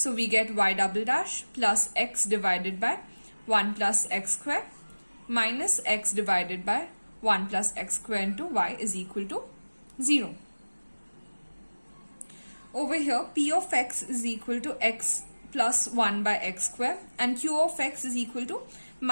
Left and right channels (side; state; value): both; inverted; correlation -1.00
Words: we get y double dash plus x divided by 1 plus x square minus x divided by 1 plus x square into y is equal to 0. Over here, p of x is equal to x plus 1 by x square and q of x is equal to